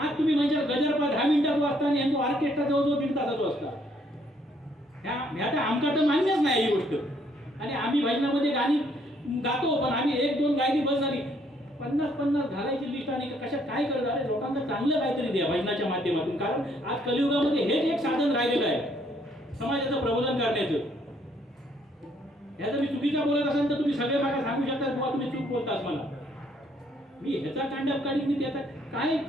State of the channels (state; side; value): normal; both; correlation 0.67